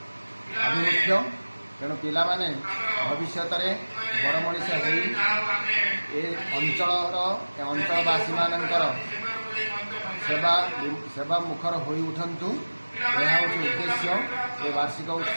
आभिमुख्य। तेणु पिला माने भविष्य में बड़ मनीष अंचलवासी मानकर सेवा मुखर हो उठंतु। यह हूँ उद्देश्य। ये वार्षिक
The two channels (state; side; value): inverted; both; correlation -1.00